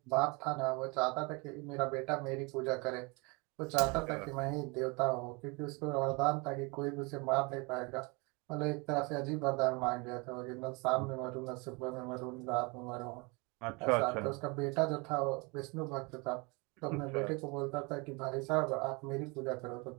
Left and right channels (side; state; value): left; quieter; 28.8 dB